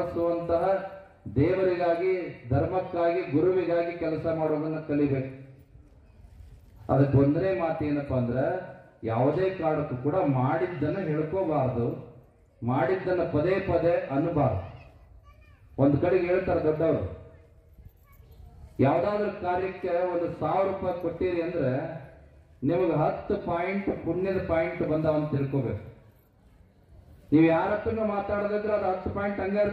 ದೇವರಿಗಾಗಿ, ಧರ್ಮಕ್ಕಾಗಿ, ಗುರುವಿಗಾಗಿ ಕೆಲಸ ಮಾಡೋದನ್ನ ಕಲಿಬೇಕು. ಅದಕ್ಕೆ ಒಂದನೇ ಮಾತು ಏನಪ್ಪಾ ಅಂದ್ರೆ, ಯಾವುದೇ ಕಾರಣಕ್ಕೂ ಕೂಡ ಮಾಡಿದ್ದನ್ನು ಹೇಳ್ಕೋಬಾರ್ದು, ಮಾಡಿದ್ದನ್ನು ಪದೇ ಪದೇ ಅನ್ನಬಾರ್ದು. ಒಂದು ಕಡೆಗೆ ಹೇಳ್ತಾರೆ ದೊಡ್ಡವರು, ಯಾವ್ದಾದ್ರು ಕಾರ್ಯಕ್ಕೆ 1,000 ರೂಪಾಯಿ ಕೊಟ್ಟಿರಿ ಅಂದ್ರೆ ನಿಮಗೆ 10 ಪಾಯಿಂಟ್ ಪುಣ್ಯದ ಪಾಯಿಂಟ್ ಬಂದಾವ ಅಂತ ತಿಳ್ಕೋಬೇಕು. ನೀವು ಯಾರ ಹತ್ರನೂ ಮಾತಾಡೋದಿದ್ರೆ ಅದು 10 ಪಾಯಿಂಟ್ ಹಂಗ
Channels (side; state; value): both; identical; correlation 1.00